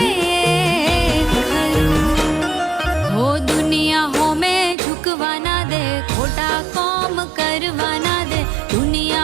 खरूं। हो दुनिया हो में झुकवाना दे, खोटा काम करवाना दे।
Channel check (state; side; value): drops out; left; at 4.8 s